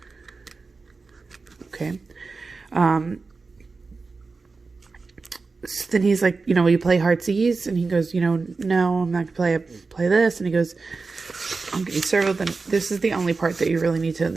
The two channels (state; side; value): quieter; left; 4.2 dB